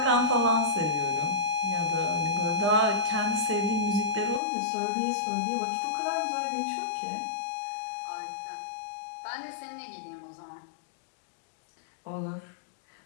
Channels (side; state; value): right; drops out; at 4.4 s